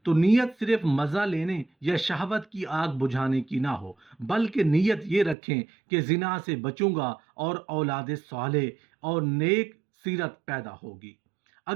तो नीयत सिर्फ मज़ा लेने या शहवत की आग बुझाने की ना हो, बल्कि नीयत ये रखें कि जिना से बचूंगा और औलाद साले और नेक सीरत पैदा होगी।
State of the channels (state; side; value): drops out; left; at 5.4 s